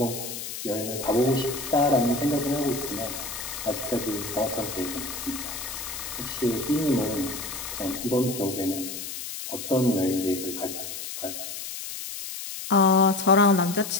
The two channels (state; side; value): noise; left; hiss, 8 dB below the sound